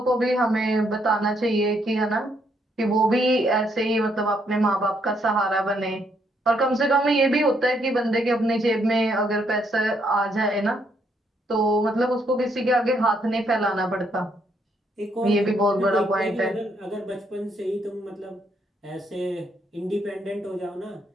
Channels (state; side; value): normal; both; correlation 0.73